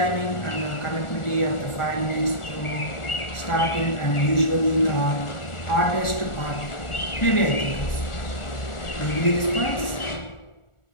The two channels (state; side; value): late; right; 1.4 ms